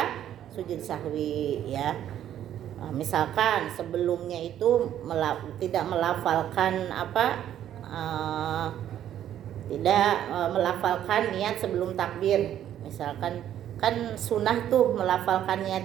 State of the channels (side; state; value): left; quieter; 11.0 dB